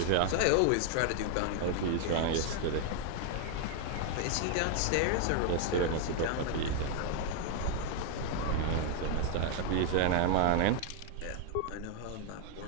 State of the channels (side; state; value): both; different; correlation 0.00